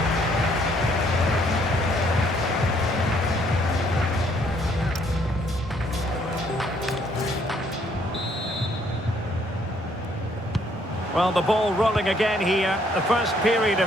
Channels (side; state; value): both; normal; correlation 0.67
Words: Well, the ball rolling again here, the first period